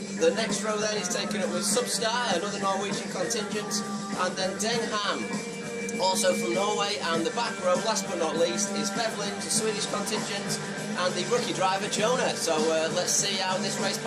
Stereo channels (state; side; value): identical; both; correlation 1.00